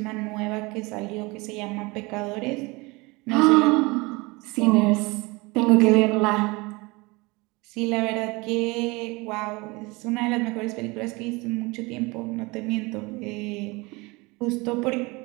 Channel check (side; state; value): left; quieter; 24.8 dB